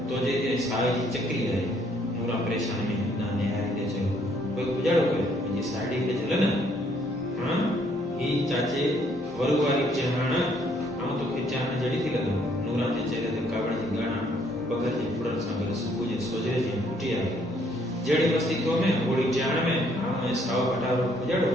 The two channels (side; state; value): both; normal; correlation 0.67